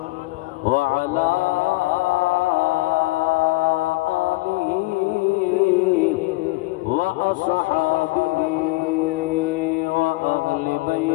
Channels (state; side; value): quieter; right; 22.0 dB